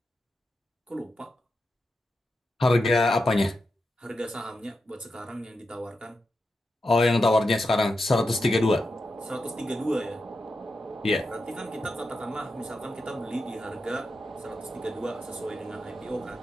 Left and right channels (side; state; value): both; normal; correlation 0.88